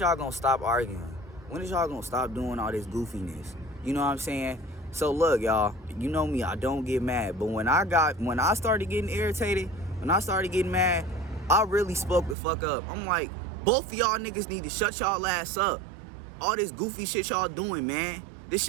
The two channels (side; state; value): left; drops out; at 12.4 s